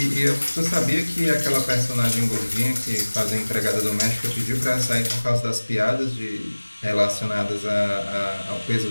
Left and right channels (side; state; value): both; inverted; correlation -1.00